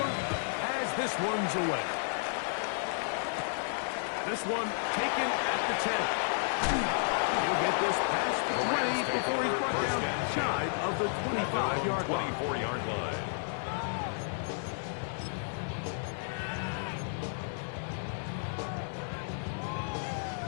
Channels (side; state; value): right; silent; digital silence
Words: as this one's away. This one taken at the 10. He'll get this past the 20 before he's brought down shy of the 25-yard line. 24-yard line.